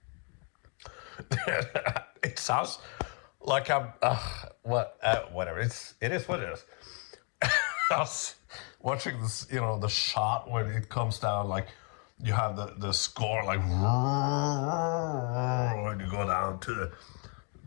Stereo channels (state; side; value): quieter; right; 35.6 dB